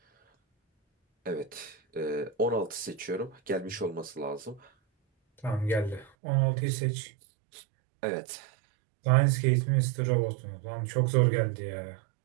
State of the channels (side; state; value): left; drops out; at 6.1 s